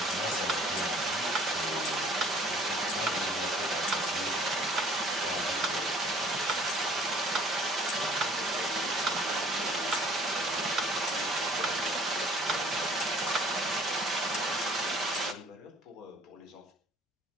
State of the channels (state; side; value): normal; both; correlation 0.54